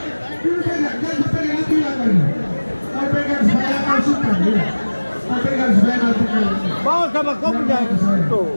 Dulu pegang, jangan pegang itu lagi. Kau pegang supaya kau suka. Kau pegang supaya nanti kau. Bawa sama kau punya itu.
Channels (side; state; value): both; inverted; correlation -1.00